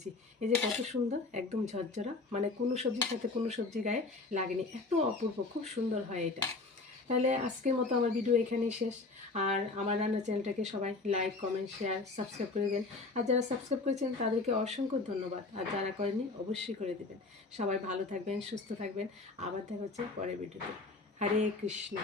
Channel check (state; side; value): quieter; right; 3.7 dB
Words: এই যে কত সুন্দর, একদম ঝরঝরা, মানে কোনো সবজির সাথে কোনো সবজি গায়ে লাগেনি, এত অপূর্ব, খুব সুন্দর হয় এটা। তাহলে আজকের মতো আমার ভিডিও এখানেই শেষ। আর আমার রান্নার চ্যানেলটাকে সবাই লাইক, কমেন্ট, শেয়ার, সাবস্ক্রাইব করে দেবেন। আর যারা সাবস্ক্রাইব করেছেন তাদেরকে অসংখ্য ধন্যবাদ, আর যারা করেননি অবশ্যই করে দেবেন। সবাই ভালো থাকবেন, সুস্থ থাকবেন। আবার দেখা হচ্ছে পরের ভিডিওতে। হরে কৃষ্ণ।